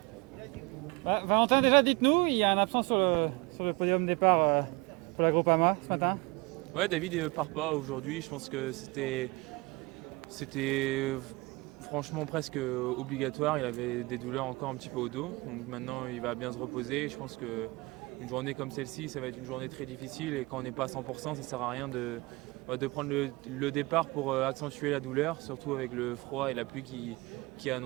Valentin, déjà dites-nous, il y a un absent sur le podium départ pour la Groupama ce matin. Ouais, David ne part pas aujourd'hui. Je pense que c'était franchement presque obligatoire. Il avait des douleurs encore un petit peu au dos. Donc maintenant, il va bien se reposer. Je pense qu'une journée comme celle-ci, ça va être une journée très difficile. Et quand on n'est pas à 100%, ça ne sert à rien de prendre le départ pour accentuer la douleur, surtout avec le froid et la pluie qui est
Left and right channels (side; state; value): left; quieter; 24.4 dB